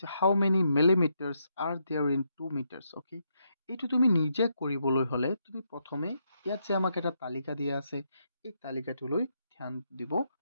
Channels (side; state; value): both; inverted; correlation -0.79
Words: how many millimetres are there in 2 metres. Okay, এইটো তুমি নিজে কৰিবলৈ হ'লে তুমি প্ৰথমে ইয়াত যে আমাক এটা তালিকা দিয়া আছে, এই তালিকাটোলৈ ধ্যান দিব